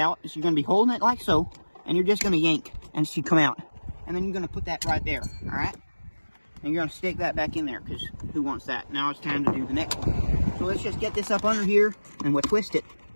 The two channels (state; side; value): inverted; both; correlation -1.00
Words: So you're going to be holding it like so, and you're just going to yank, and it should come out. And then you're going to put that right there, alright? And you're going to stick that back in there, because who wants that? Now it's time to do the next one. So let's just get this up under here, and we'll twist it.